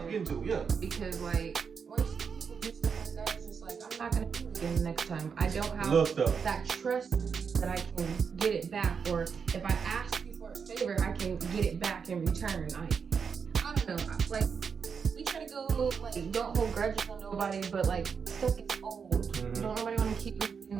getting to. Yeah. Because once people do stuff like that, it's just like I'm not gonna do it again the next time. I don't have that trust that I can get it back, or if I ask you for a favor, I can get it back in return. I don't know. Like we try to go don't hold grudges on nobody, but stuff gets old. Mm-hmm. Don't nobody want to keep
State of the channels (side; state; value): left; quieter; 6.2 dB